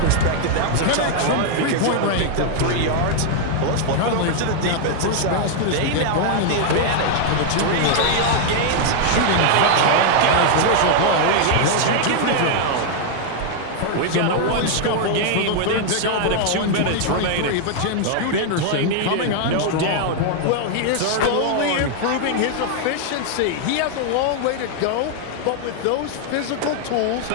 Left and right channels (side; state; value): both; different; correlation 0.00